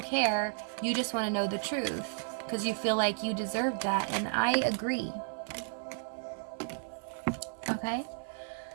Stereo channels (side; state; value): left; silent; 56 dB below the other